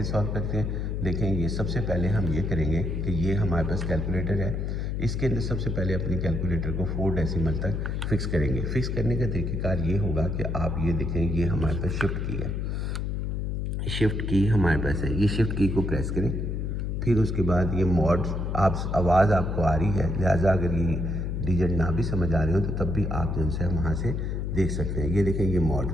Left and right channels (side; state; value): left; noise; hum, 1 dB below the sound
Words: सॉल्व करते हैं देखें। ये सबसे पहले हम ये करेंगे कि ये हमारे पास कैलकुलेटर है, इसके अंदर सबसे पहले अपनी कैलकुलेटर को 4 डेसिमल तक फिक्स करेंगे। फिक्स करने का तरीक़ेकार ये होगा कि आप ये देखें, ये हमारे पास शिफ्ट की है, शिफ्ट की हमारे पास है, ये शिफ्ट की को प्रेस करें। फिर उसके बाद ये मॉड, आप आवाज़ आपको आ रही है, लिहाजा अगर ये डिजिट ना भी समझ आ रहे हो तो तब भी आप जो है वहाँ से देख सकते हैं। ये देखें, ये मॉड,